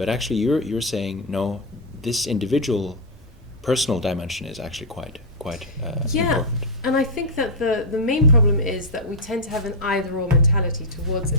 actually, you're saying no, this individual, personal dimension is actually quite important. And I think that the main problem is that we tend to have an either-or mentality towards it.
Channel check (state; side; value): normal; both; correlation -0.03